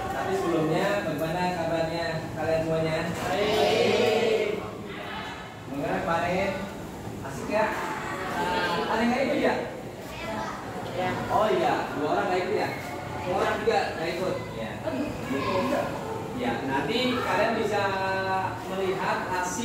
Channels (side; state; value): both; identical; correlation 1.00